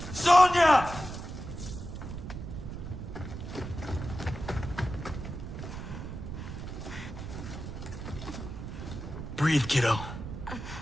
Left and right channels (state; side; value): noise; right; rumble, 8 dB below the sound